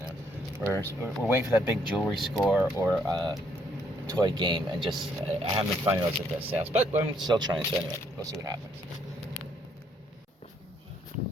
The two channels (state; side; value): normal; both; correlation 0.69